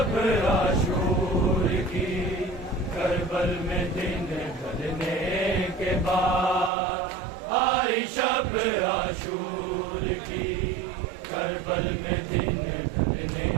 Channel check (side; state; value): left; drops out; at 6.7 s